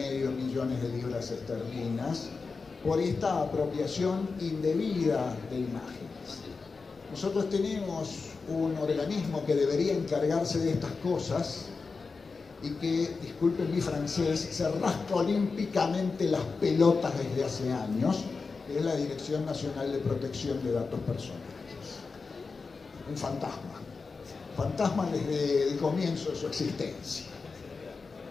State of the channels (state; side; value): quieter; right; 4.5 dB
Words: millones de libras esterlinas por esta apropiación indebida de imágenes. Nosotros tenemos un organismo que debería encargarse de estas cosas y que, disculpen mi francés, se rasca olímpicamente las pelotas desde hace años, que es la Dirección Nacional de Protección de Datos Personales. Un fantasma desde el comienzo de su existencia.